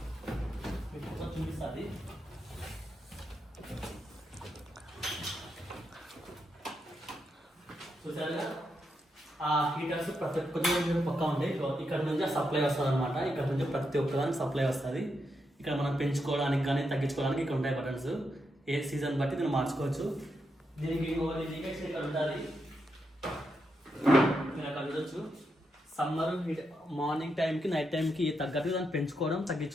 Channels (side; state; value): both; normal; correlation 0.83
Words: మీకు చూపిస్తుంది. చూసారుగా ఆ హీటర్స్ ప్రతి ఒక్క పక్కా ఉంటాయి. ఇక్కడ నుంచి సప్లై వస్తుంది అనమాట. ఇక్కడ నుంచి ప్రతి ఒక్కదానికి సప్లై వస్తుంది. ఇక్కడ మనం పెంచుకోవడానికి కానీ తగ్గించుకోవడానికి ఇక్కడ ఉంటాయి బటన్స్. ఏ సీజన్ బట్టి దీన్ని మార్చుకోవచ్చు. దీనికి ఇండికేషన్ ఇక్కడ ఉంటుంది, మీరు అక్కడ చూడొచ్చు. సమ్మర్ మార్నింగ్ టైంకి నైట్ టైంకి తగ్గట్టుగా దాన్ని పెంచుకోవడం